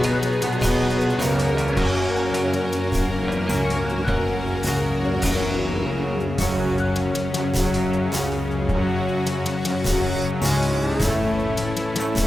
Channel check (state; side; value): normal; both; correlation 0.92